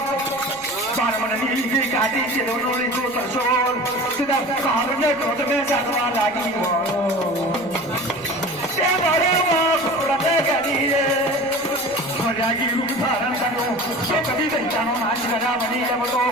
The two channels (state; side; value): noise; left; rumble, 25 dB below the sound